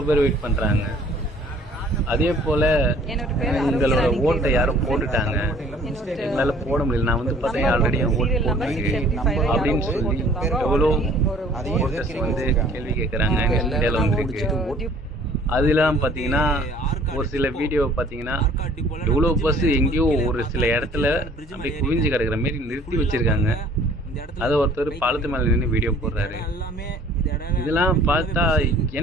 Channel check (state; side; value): normal; both; correlation 0.54